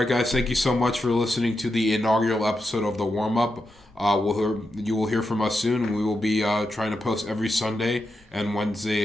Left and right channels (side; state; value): both; normal; correlation 0.87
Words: guys. Thank you so much for listening to the inaugural episode of the Warmup. You will hear from us soon, and we will be trying to post every Sunday and